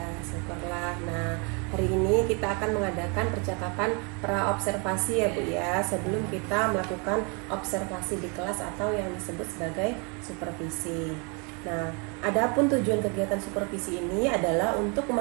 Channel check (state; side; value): quieter; left; 33.9 dB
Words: syukurlah. Nah, hari ini kita akan mengadakan percakapan pra-observasi ya Bu ya, sebelum kita melakukan observasi di kelas atau yang disebut sebagai supervisi. Nah, adapun tujuan kegiatan supervisi ini adalah untuk